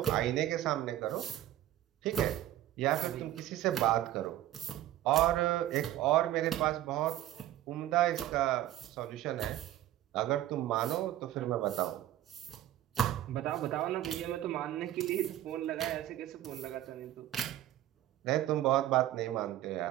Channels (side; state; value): left; quieter; 13.4 dB